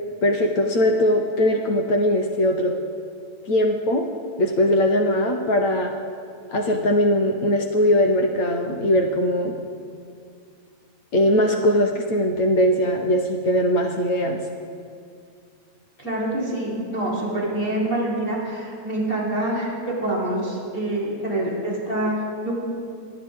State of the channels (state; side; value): late; right; 8.8 ms